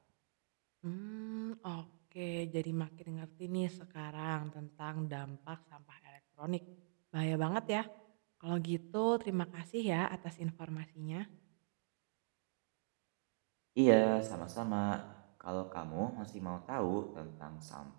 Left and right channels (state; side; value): silent; left; digital silence